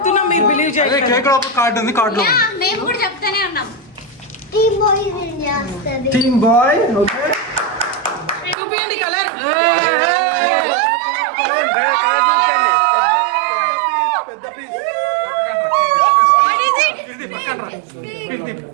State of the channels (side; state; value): left; drops out; at 8.6 s